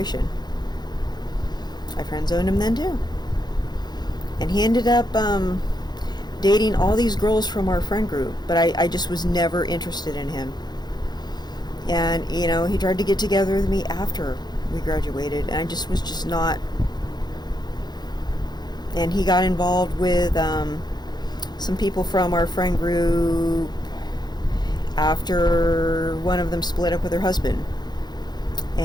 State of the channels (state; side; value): late; right; 0.20 ms